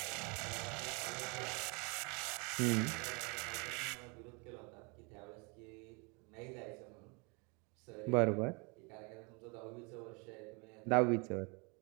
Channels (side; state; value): left; quieter; 31.6 dB